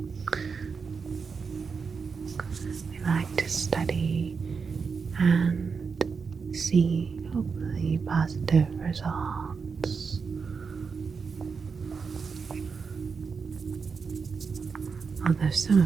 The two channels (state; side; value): quieter; left; 5.4 dB